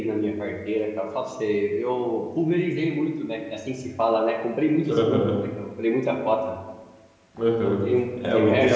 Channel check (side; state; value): both; identical; correlation 1.00